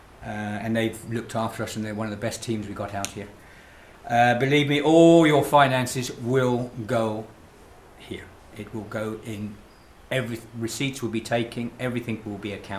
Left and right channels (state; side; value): identical; both; correlation 1.00